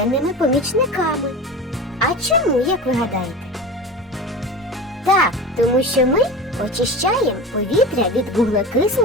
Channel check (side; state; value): both; normal; correlation 0.31